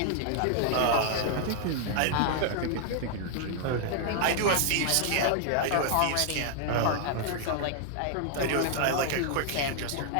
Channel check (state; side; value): different; both; correlation 0.00